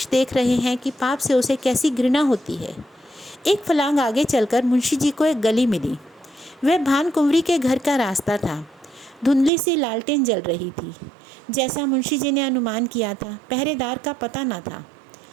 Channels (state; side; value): drops out; left; at 9.5 s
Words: देख रहे हैं कि पाप से उसे कैसी घृणा होती है। एक फलांग आगे चलकर मुंशी जी को एक गली मिली। वह भानकुंवरी के घर का रास्ता था। धुंधली सी लालटेन जल रही थी। जैसा मुंशी जी ने अनुमान किया था, पहरेदार का पता न था।